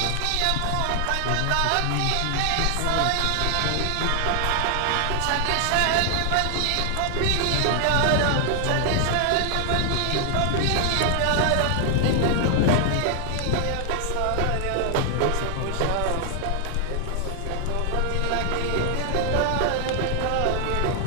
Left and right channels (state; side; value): different; both; correlation 0.00